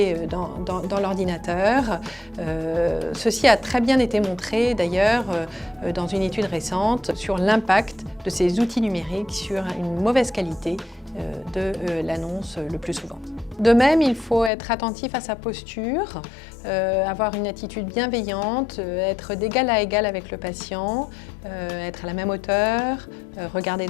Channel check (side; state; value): right; drops out; at 14.5 s